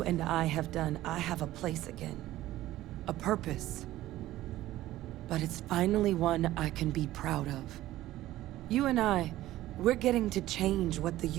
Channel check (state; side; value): quieter; left; 15.2 dB